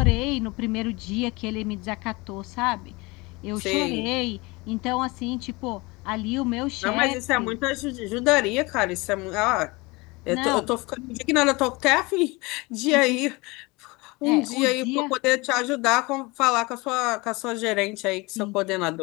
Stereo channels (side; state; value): right; quieter; 24.5 dB